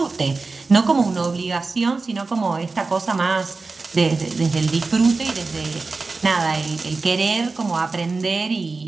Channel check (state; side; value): quieter; left; 3.9 dB